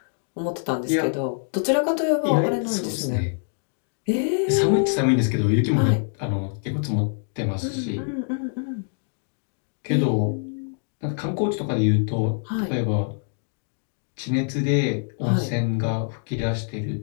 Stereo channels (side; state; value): right; silent; 62 dB below the other